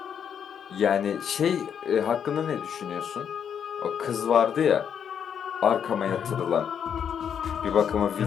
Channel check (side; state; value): right; quieter; 8.0 dB